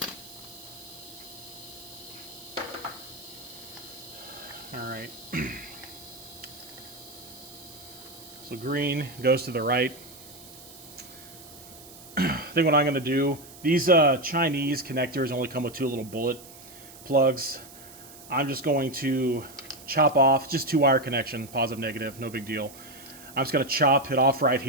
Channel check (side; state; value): right; noise; hiss, 18 dB below the sound